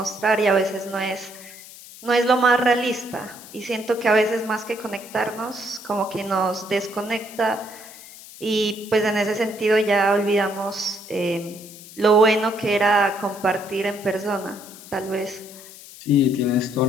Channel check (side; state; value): left; noise; hiss, 17 dB below the sound